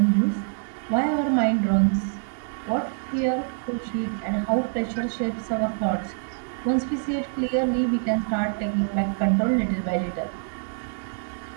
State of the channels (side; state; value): left; silent; digital silence